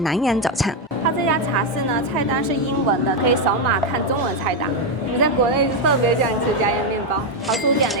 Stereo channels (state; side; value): normal; both; correlation 0.04